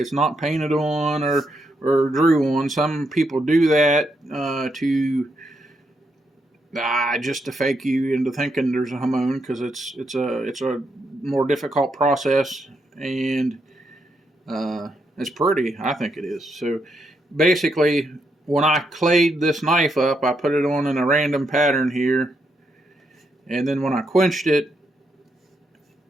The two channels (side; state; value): both; normal; correlation 0.79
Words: not painted on or drew on. Some people do that just to fake you into thinking there's a hamon, because it's a more difficult process, and it's pretty. I think it is. So basically, when I clayed this knife up, I put it on in a random pattern here, and then when I quenched it,